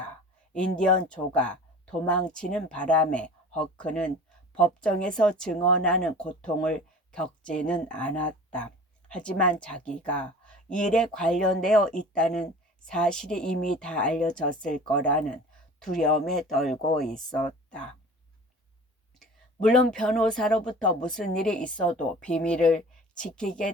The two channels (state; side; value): normal; both; correlation 0.41